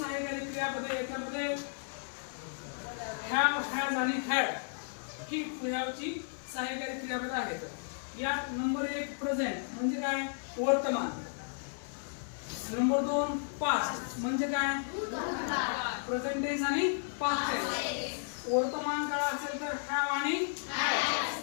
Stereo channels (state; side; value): silent; right; 55 dB below the other